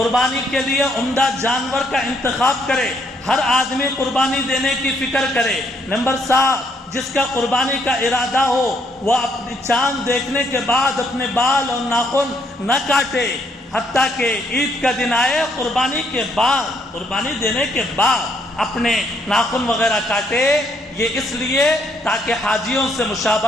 کے لیے عمدہ جانور کا انتخاب کرے، ہر آدمی قربانی دینے کی فکر کرے۔ نمبر 7 جس کا قربانی کا ارادہ ہو وہ اپنی چاند دیکھنے کے بعد اپنے بال اور ناخن نہ کاٹے، حتیٰ کہ عید کا دن آئے قربانی کے بعد، قربانی دینے کے بعد اپنے ناخن وغیرہ کاٹے، یہ اس لیے تاکہ حاجیوں سے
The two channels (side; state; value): both; normal; correlation 0.71